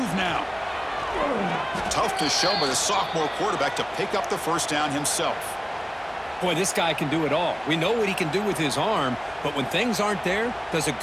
now. Tough to show by the sophomore quarterback to pick up the first down himself. Boy, this guy can do it all. We know what he can do with his arm, but when things aren't there, does a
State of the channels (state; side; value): identical; both; correlation 1.00